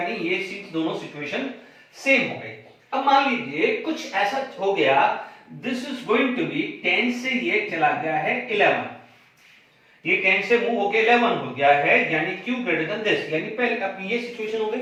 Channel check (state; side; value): identical; both; correlation 1.00